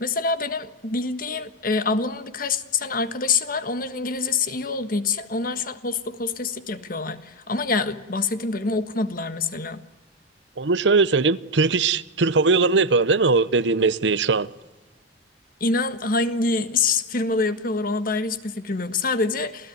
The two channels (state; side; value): normal; both; correlation 0.07